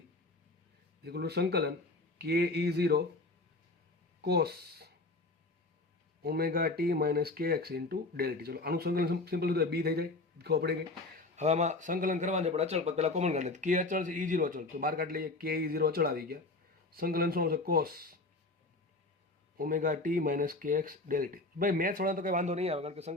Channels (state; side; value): quieter; right; 3.1 dB